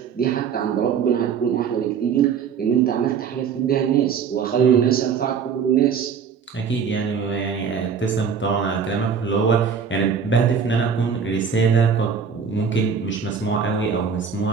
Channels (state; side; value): quieter; left; 6.6 dB